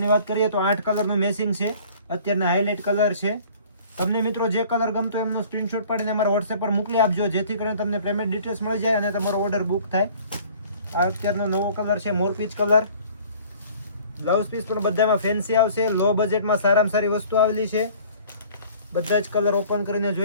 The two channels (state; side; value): inverted; both; correlation -0.50